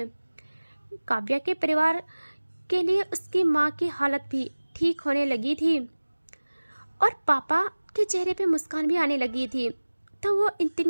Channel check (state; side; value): inverted; both; correlation -1.00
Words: काव्या के परिवार के लिए। उसकी माँ की हालत भी ठीक होने लगी थी और पापा के चेहरे पे मुस्कान भी आने लगी थी। तो वो